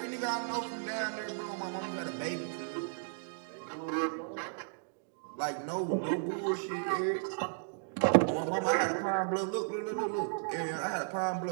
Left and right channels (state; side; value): silent; left; digital silence